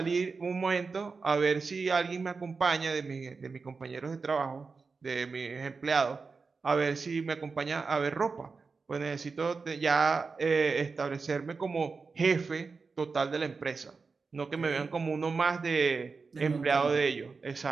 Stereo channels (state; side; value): quieter; left; 4.6 dB